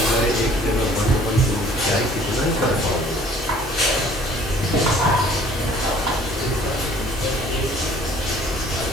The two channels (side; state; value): both; normal; correlation 0.54